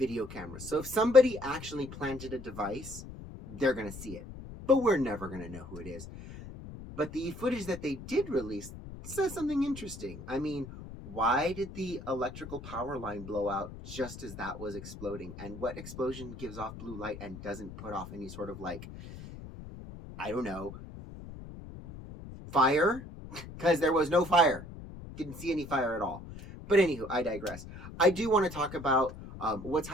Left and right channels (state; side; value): noise; left; rumble, 13 dB below the sound